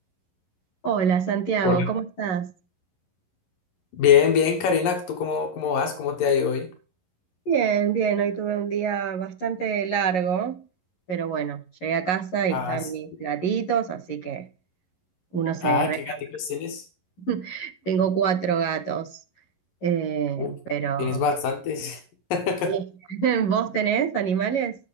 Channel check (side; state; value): right; late; 11 ms